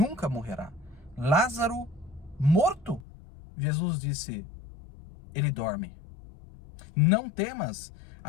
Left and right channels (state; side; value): drops out; right; at 3.0 s